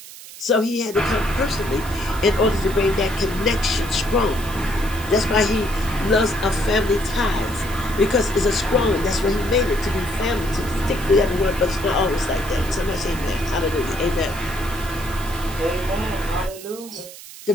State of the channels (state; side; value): noise; right; hiss, 15 dB below the sound